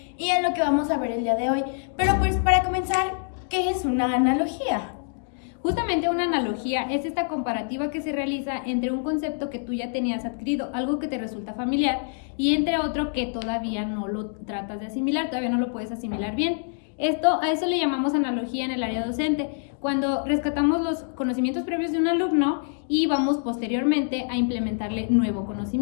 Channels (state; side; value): silent; right; 61 dB below the other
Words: y en lo que vamos a ver el día de hoy. Pero pues para comenzar, ¿qué es una analogía? Justamente una analogía es esta comparativa que se realiza entre un concepto que tú ya tenías adquirido, algo que te resulta familiar, y entre otro que todavía no lo tratas de asimilar, todavía no lo puedes asimilar bien. A eso le llamamos analogía en el área docente, cuando rescatamos los conocimientos previos de un alumno y vamos posteriormente a implementarle nuevo